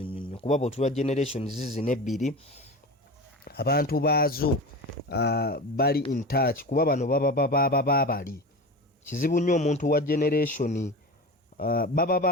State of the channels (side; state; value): both; normal; correlation 0.29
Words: kuba bw'otulwa generation zinebbiri abantu baazo bali in touch kuba bano baba bali kizibu nnyo omuntu wa generation